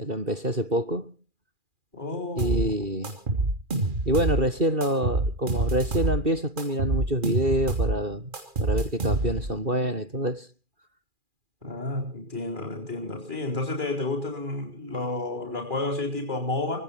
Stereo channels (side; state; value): left; late; 2.4 ms